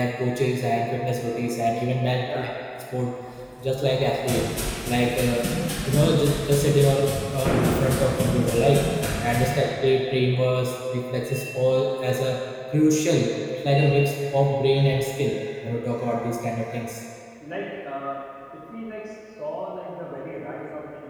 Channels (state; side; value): identical; both; correlation 1.00